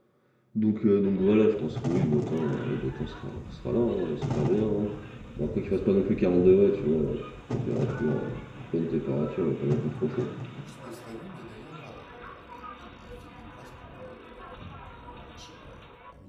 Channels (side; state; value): both; identical; correlation 1.00